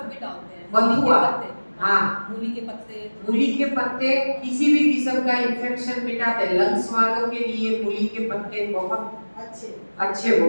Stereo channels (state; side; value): inverted; both; correlation -1.00